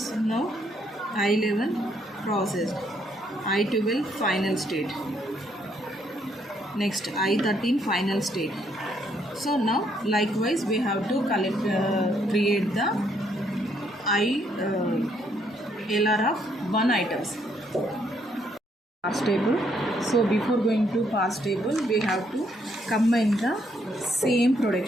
now I11 processed. I12 final state. Next I13 final state. So now likewise we have to create the LR of one items. Parse table. So before going to parse table, we have to combine the same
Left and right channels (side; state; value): both; normal; correlation 0.71